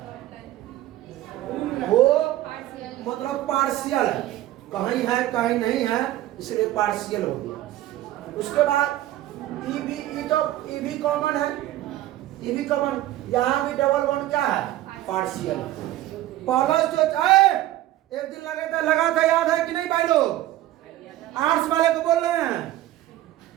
वो मतलब पार्शियल है, कहीं है कहीं नहीं है, इसलिए पार्शियल हो गया। उसके बाद ई भी कॉमन है, ई भी कॉमन। यहाँ भी डबल बॉन्ड क्या है? पार्शियल। प्लस जो चाहे एक दिन लगा था याद है कि नहीं भाई लोग? आर्ट्स वाले को बोल रहे हैं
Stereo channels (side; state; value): left; quieter; 14.7 dB